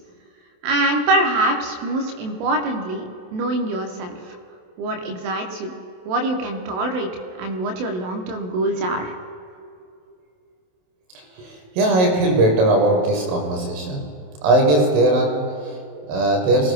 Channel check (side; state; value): left; late; 27 ms